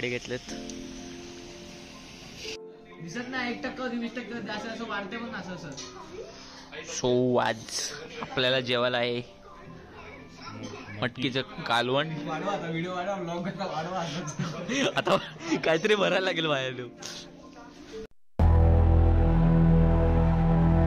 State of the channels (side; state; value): both; identical; correlation 1.00